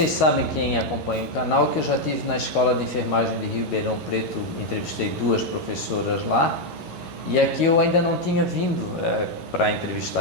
sabem, quem acompanha o canal, que eu já estive na Escola de Enfermagem de Ribeirão Preto, entrevistei 2 professoras lá, e aqui eu ainda não tinha vindo para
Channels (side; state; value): right; late; 11 ms